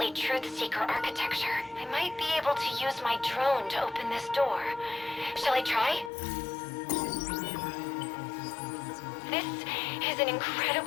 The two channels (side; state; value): right; drops out; at 6.1 s